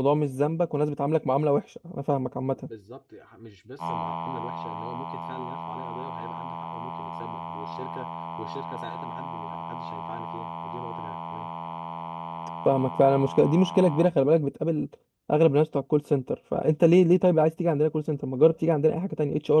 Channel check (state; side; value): identical; both; correlation 1.00